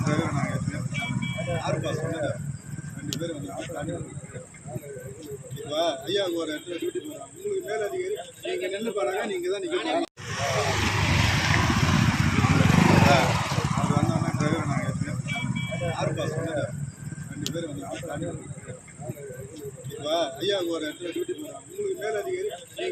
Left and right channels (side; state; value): both; identical; correlation 1.00